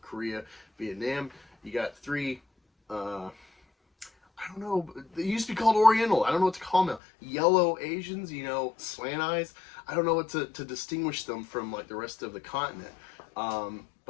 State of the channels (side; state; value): right; drops out; at 7.0 s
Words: Korea, Vietnam. You got three, I don't know, they used to be called Oriental. I don't know what to call them now. Yellow Asians, slant eyes. I don't know what to distinguish them from, like, the rest of the continent.